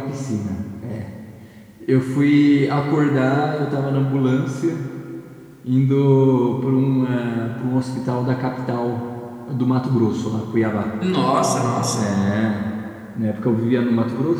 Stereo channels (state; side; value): identical; both; correlation 1.00